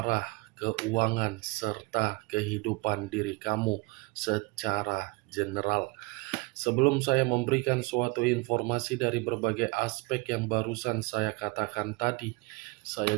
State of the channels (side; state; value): left; quieter; 24.5 dB